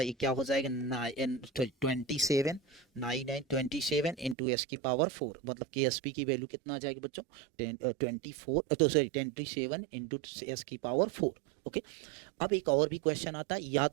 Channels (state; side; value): drops out; left; at 4.4 s